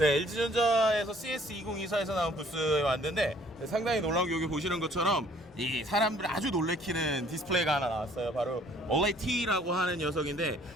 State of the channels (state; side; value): normal; both; correlation 0.59